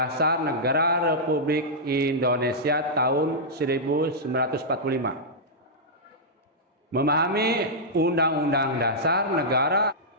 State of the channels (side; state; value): both; normal; correlation -0.10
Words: Negara Republik Indonesia tahun 1945. Memahami Undang-Undang Dasar Negara,